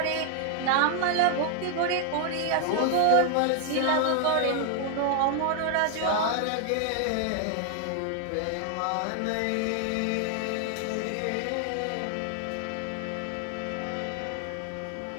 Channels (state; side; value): different; both; correlation 0.00